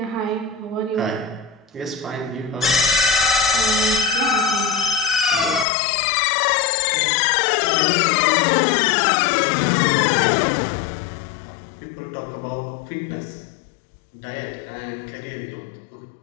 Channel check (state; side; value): drops out; right; at 5.7 s